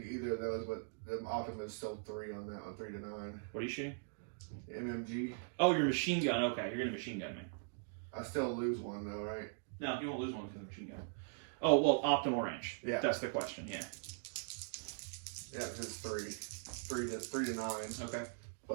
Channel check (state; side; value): silent; left; digital silence